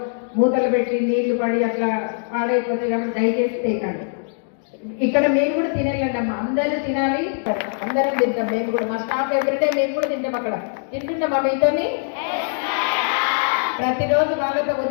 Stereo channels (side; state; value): right; silent; digital silence